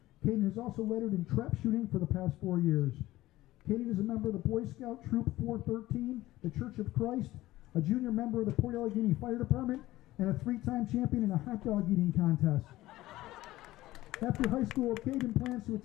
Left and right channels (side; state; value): right; quieter; 16.6 dB